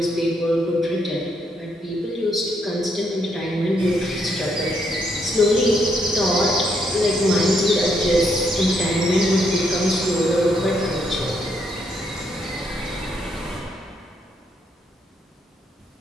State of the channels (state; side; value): normal; both; correlation 0.74